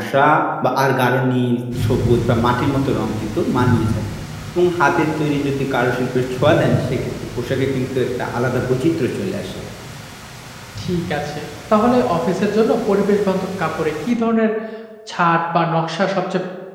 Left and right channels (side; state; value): both; identical; correlation 1.00